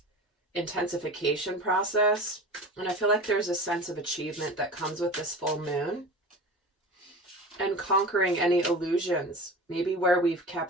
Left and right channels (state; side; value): normal; both; correlation 0.34